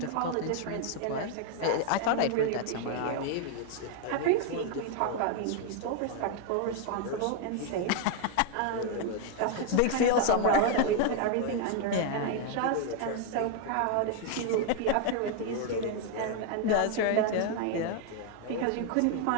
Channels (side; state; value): both; different; correlation 0.00